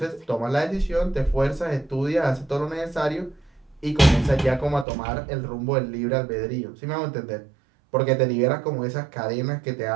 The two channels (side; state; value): left; drops out; at 4.9 s